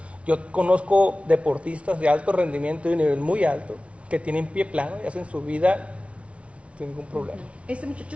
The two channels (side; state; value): left; late; 0.062 ms